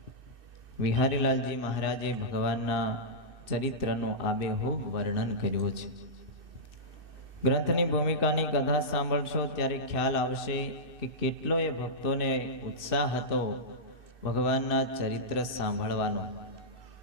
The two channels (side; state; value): left; late; 2.6 ms